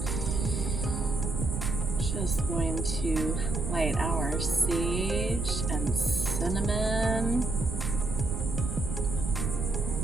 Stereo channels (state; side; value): noise; right; rumble, 2 dB below the sound